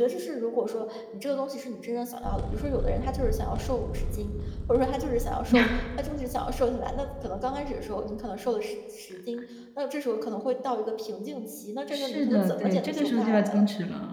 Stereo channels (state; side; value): identical; both; correlation 1.00